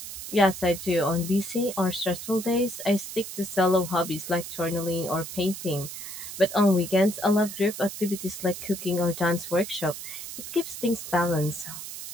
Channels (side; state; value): right; noise; hiss, 9 dB below the sound